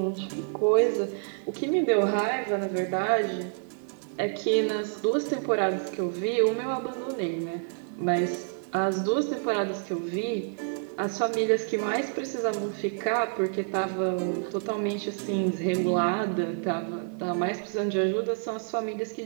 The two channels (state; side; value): silent; left; 59 dB below the other